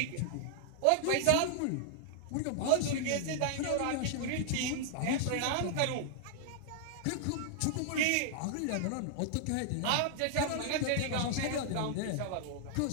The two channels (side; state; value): both; different; correlation -0.01